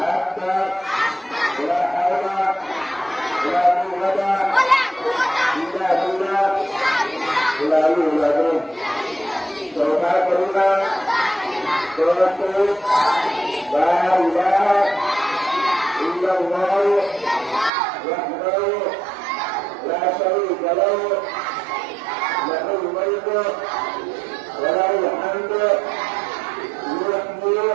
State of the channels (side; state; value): left; drops out; at 17.7 s